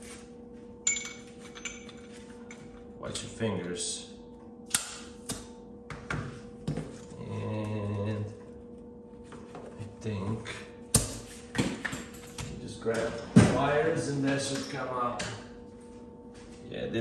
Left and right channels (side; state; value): both; identical; correlation 1.00